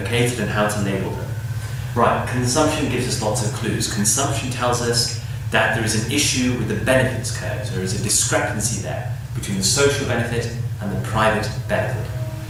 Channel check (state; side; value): identical; both; correlation 1.00